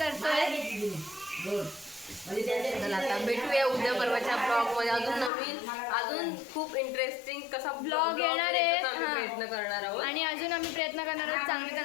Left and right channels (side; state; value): right; drops out; at 5.3 s